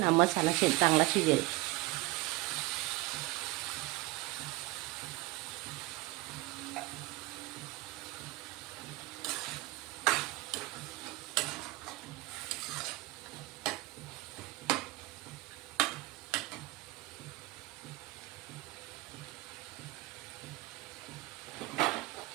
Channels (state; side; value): quieter; left; 20.8 dB